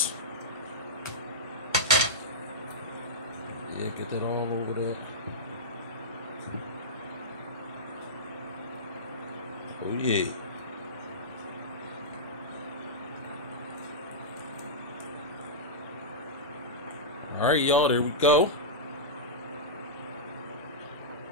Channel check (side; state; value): both; normal; correlation -0.11